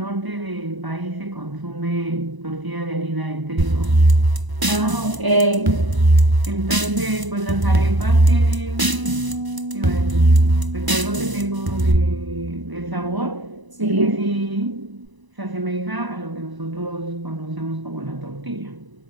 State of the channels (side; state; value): left; late; 1.0 ms